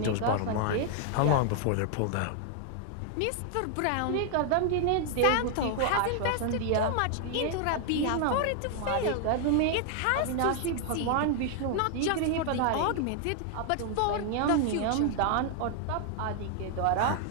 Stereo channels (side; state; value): both; different; correlation 0.00